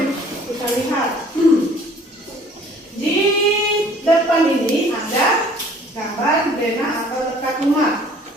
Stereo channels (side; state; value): both; normal; correlation 0.54